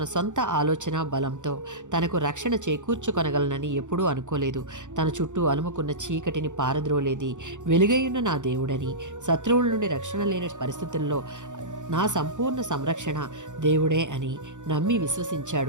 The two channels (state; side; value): late; left; 0.86 ms